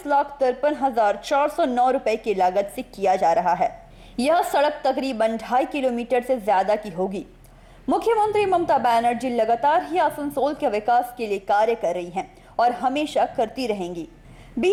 रुपए की लागत से किया जा रहा है। यह सड़क तकरीबन 2.5 किलोमीटर से ज्यादा की होगी। मुख्यमंत्री ममता बनर्जी लगातार ही आसनसोल के विकास के लिए कार्य कर रही हैं और हमेशा करती रहेंगी।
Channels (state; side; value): identical; both; correlation 1.00